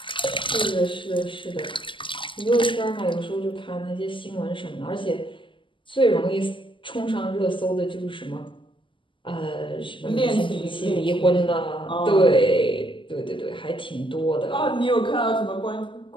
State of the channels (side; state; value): right; late; 0.25 ms